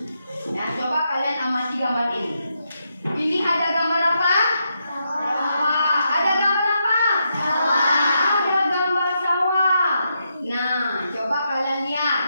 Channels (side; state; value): both; inverted; correlation -0.82